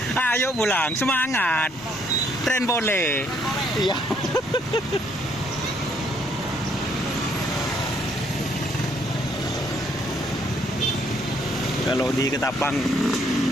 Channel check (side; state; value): both; normal; correlation 0.68